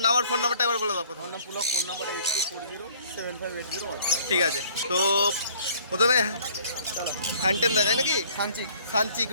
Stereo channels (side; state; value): both; inverted; correlation -0.56